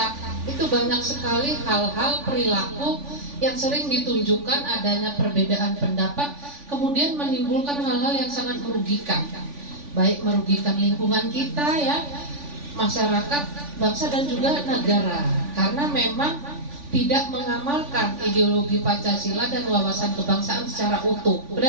itu banyak sekali hal-hal perilaku yang sering ditunjukkan adanya perbedaan pendapat, kemudian menimbulkan hal-hal yang sangat merugikan, baik merugikan lingkungan kita ya, masyarakat, bangsa dan juga negara, karena memang tidak mengamalkan ideologi Pancasila dan wawasan kebangsaan secara utuh,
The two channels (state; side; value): late; left; 3.5 ms